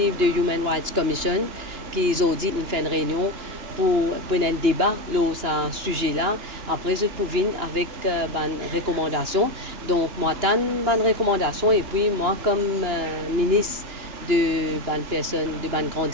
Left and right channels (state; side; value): late; left; 2.9 ms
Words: de Human Rights Commission qui ont dit qu'ils fait une réunion pour un débat sur ce sujet-là. Après, je peux venir avec une recommandation. Donc, moi, j'ai une recommandation et puis moi, comme ministre de personnes, de grand